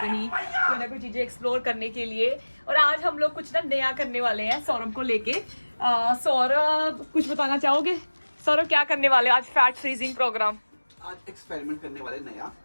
कहीं कोई ना कोई चीज़ें एक्सप्लोर करने के लिए। और आज हम लोग कुछ ना नया करने वाले हैं सौरभ को लेके। सौरभ कुछ बताना चाहोगे? सौरभ क्या करने वाले आज? फैट फ्रीजिंग प्रोग्राम आज एक्सपेरिमेंट करने वाले नया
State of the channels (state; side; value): inverted; both; correlation -1.00